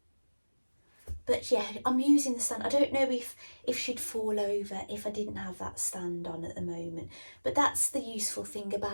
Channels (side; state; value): both; inverted; correlation -1.00